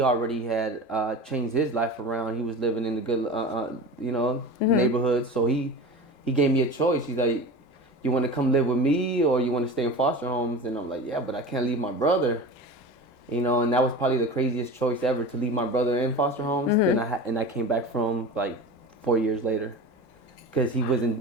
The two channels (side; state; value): right; late; 3.7 ms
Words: had changed his life around. He was living in the good, you know, neighborhood. So he gave me a choice. He's like, you want to come live with me or you want to stay in foster homes? And I'm like, yeah, but I can't leave my brother. You know, and that was probably the craziest choice ever, to leave my brother in foster homes. Then I came back from like 4 years later. Because he